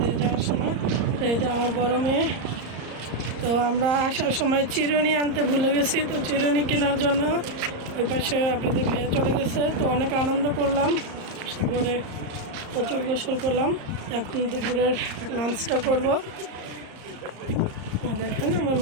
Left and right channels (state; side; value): late; left; 34 ms